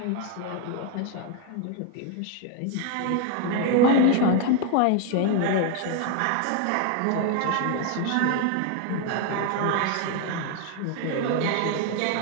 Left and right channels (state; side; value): different; both; correlation 0.01